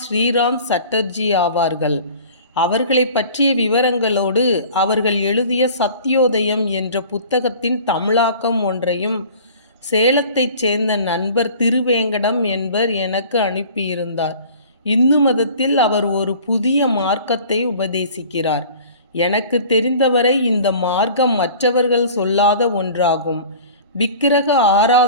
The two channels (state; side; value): inverted; both; correlation -0.44